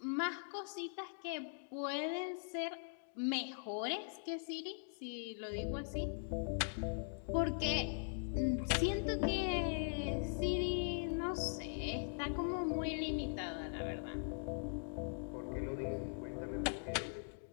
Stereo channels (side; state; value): right; silent; digital silence